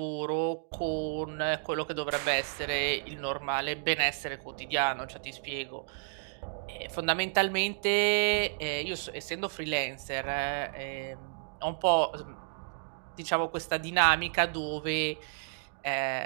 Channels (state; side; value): silent; left; digital silence